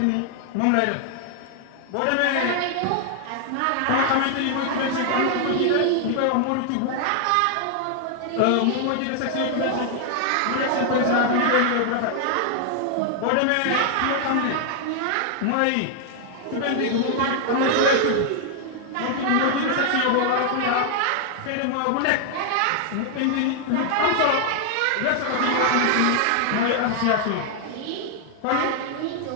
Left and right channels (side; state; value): both; different; correlation 0.00